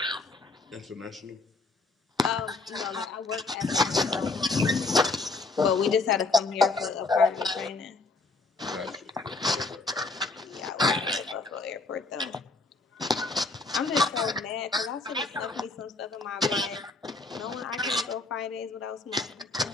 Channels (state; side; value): quieter; right; 3.6 dB